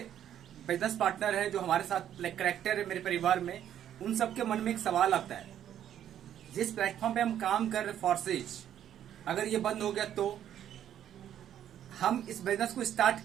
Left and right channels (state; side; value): quieter; left; 10.5 dB